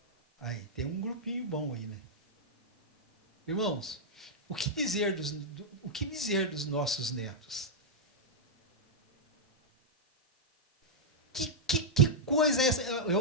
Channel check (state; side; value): normal; both; correlation -0.07